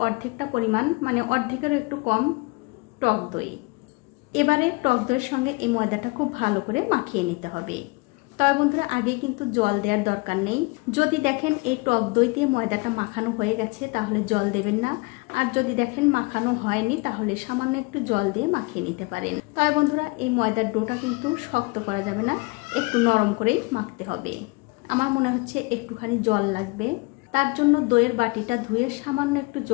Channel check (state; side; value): quieter; right; 27.0 dB